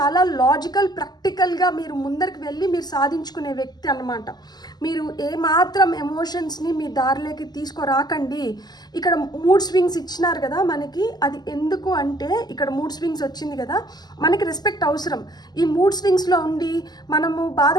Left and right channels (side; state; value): right; late; 0.20 ms